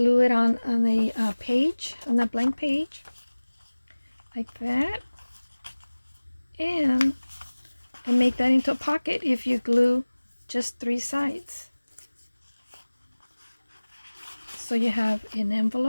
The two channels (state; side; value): inverted; both; correlation -1.00